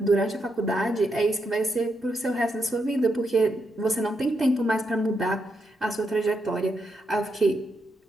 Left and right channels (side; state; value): both; normal; correlation 0.81